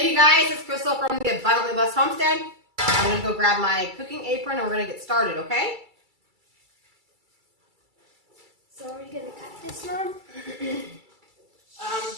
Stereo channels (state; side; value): late; left; 2.3 ms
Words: you guys, it's Crystal from the Abundantly Blessed Homestead. I'm going to go grab my cooking apron and we're going to get started, okay? So are we going to cut this one? Maybe